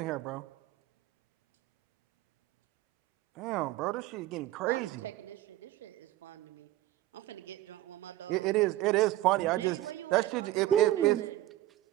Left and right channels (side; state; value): left; quieter; 15.4 dB